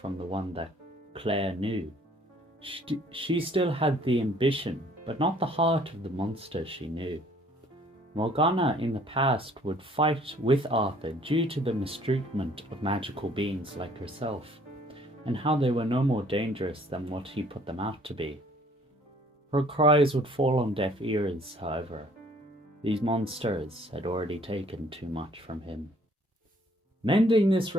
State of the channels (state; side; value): normal; both; correlation 0.58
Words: the one that Claire knew. She still had the ambition, but not the heart of the monster she knew. Morgana in the past would fight with Arthur due to the mistreatment of magical beings like herself, and how they were no more dangerous than what he put them out to be. Her cries would fall on deaf ears, however. These monsters had already taken too much from him. Mending this